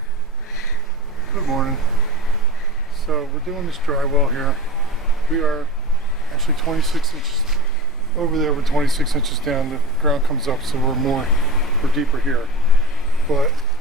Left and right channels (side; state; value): both; normal; correlation 0.32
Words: Good morning. So we're doing this drywell here. We are actually 26 inches over there. We're 26 inches down. The ground comes up, so we're deeper here. But